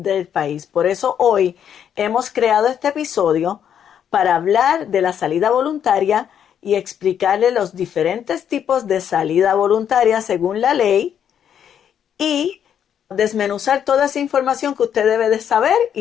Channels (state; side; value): quieter; right; 8.9 dB